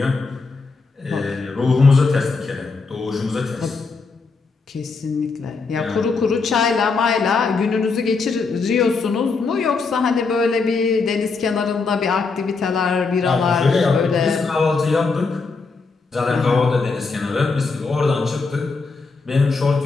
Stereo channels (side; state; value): right; quieter; 4.4 dB